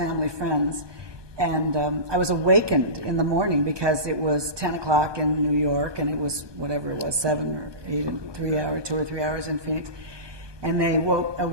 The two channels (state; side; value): late; left; 1.2 ms